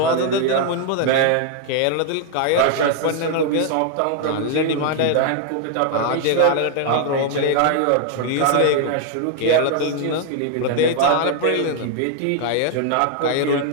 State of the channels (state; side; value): different; both; correlation 0.00